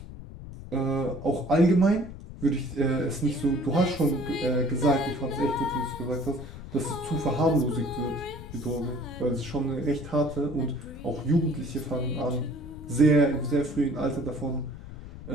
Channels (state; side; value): noise; left; rumble, 13 dB below the sound